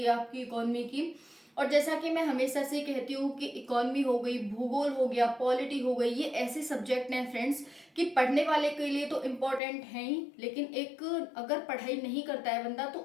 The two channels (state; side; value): drops out; right; at 9.6 s